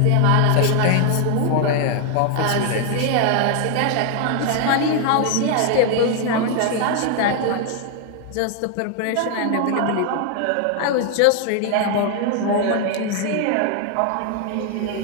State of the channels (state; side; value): different; both; correlation 0.00